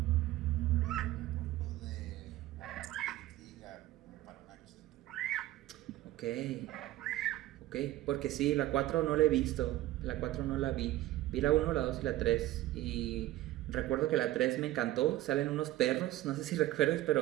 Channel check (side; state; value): left; quieter; 15.6 dB